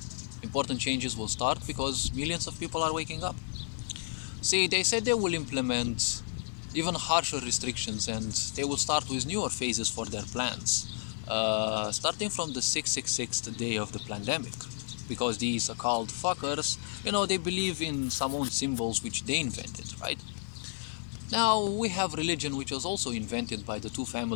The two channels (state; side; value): silent; right; 57 dB below the other